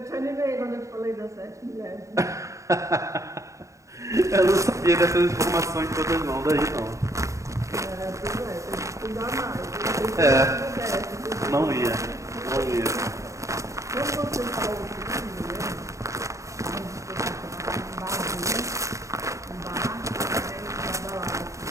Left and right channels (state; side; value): late; left; 0.15 ms